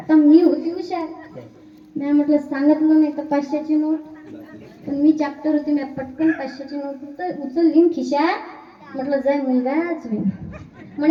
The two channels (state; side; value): identical; both; correlation 1.00